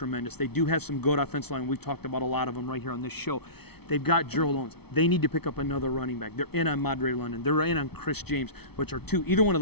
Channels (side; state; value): right; late; 0.97 ms